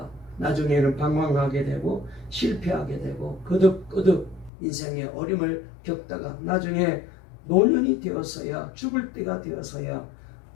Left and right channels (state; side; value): drops out; right; at 4.5 s